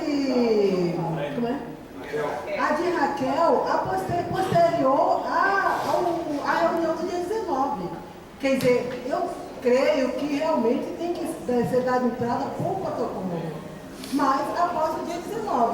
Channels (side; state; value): both; identical; correlation 1.00